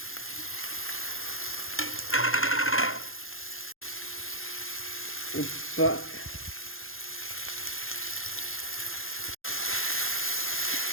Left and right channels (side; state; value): right; late; 0.60 ms